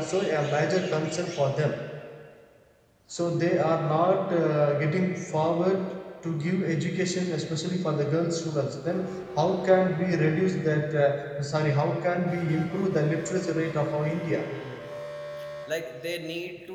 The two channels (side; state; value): both; identical; correlation 1.00